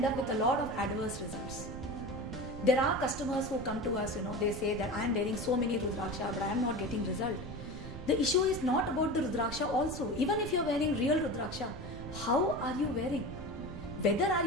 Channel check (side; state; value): right; noise; rumble, 10 dB below the sound